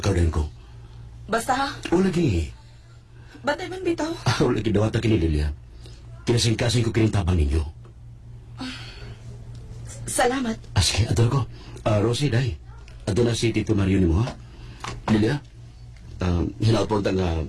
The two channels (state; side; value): identical; both; correlation 1.00